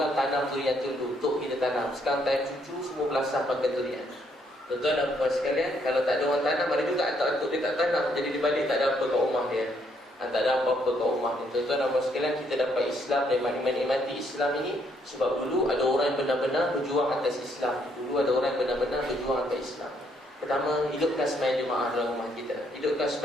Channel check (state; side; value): normal; both; correlation 0.71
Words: tanam durian tu dulu untuk kita tanam. Sekarang time cucu semua belasah pakai durian. Tuan-tuan dan puan sekalian, kalau tak ada orang tanam, ada juga atuk-atuk dia tak tanam, jadi di balik tak ada apa kat rumah dia. Tak ada apa-apa kat rumah dia. Tuan-tuan dan puan sekalian, kita dapat Islam dan menikmati Islam ini sebab dulu ada orang yang benar-benar berjuang atas Islam. Dulu ada orang yang benar-benar berjuang atas Islam. Pertama, hidupkan sembahyang jemaah dalam rumah kita. Hidupkan